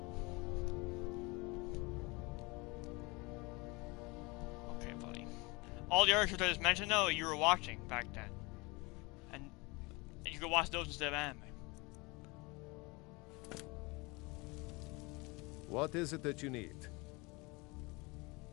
Okay, buddy. All the other shows I just mentioned, though, you were watching back then, and you could watch those instead of anime. What is it that you need?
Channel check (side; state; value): right; quieter; 26.0 dB